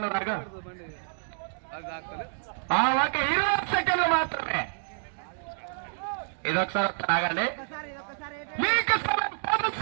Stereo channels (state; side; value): silent; left; digital silence